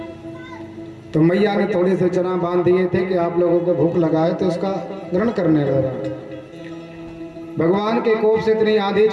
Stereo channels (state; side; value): identical; both; correlation 1.00